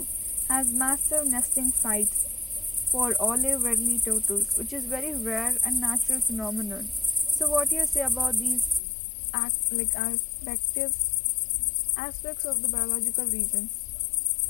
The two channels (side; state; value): right; drops out; at 8.8 s